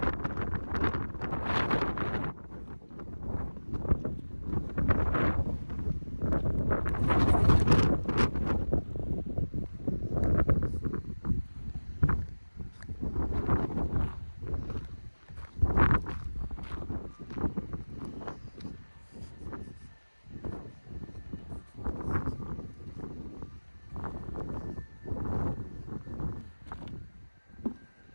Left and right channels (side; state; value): both; inverted; correlation -1.00